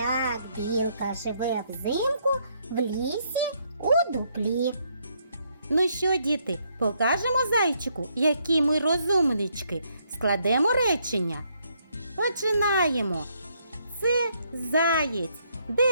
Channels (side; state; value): both; inverted; correlation -0.73